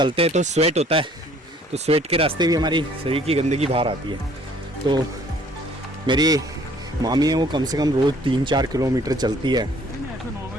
हैं तो स्वेट होता है, तो स्वेट के रास्ते भी हमारी शरीर की गंदगी बाहर आती है। तो मेरी मामी है, वो कम से कम रोज़ 3-4 किलोमीटर चलती है ऐसे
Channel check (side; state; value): both; normal; correlation 0.58